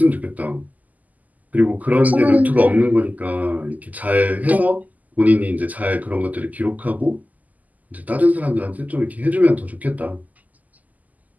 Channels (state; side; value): late; left; 0.079 ms